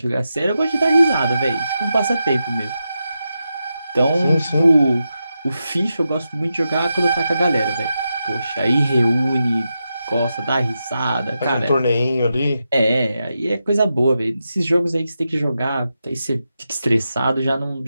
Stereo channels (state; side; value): inverted; both; correlation -0.88